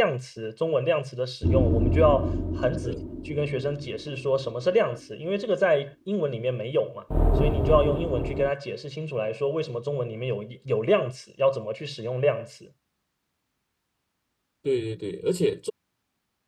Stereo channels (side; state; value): both; identical; correlation 1.00